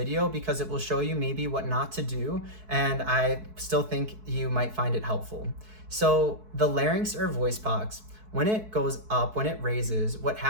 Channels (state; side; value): late; left; 4.6 ms